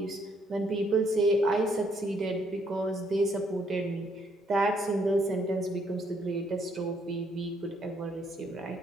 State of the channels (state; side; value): normal; both; correlation 0.70